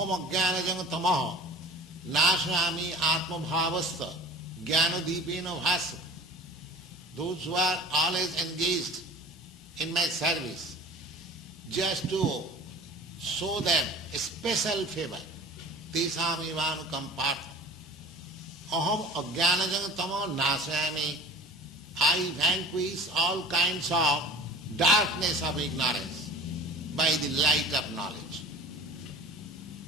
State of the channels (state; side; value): normal; both; correlation 0.43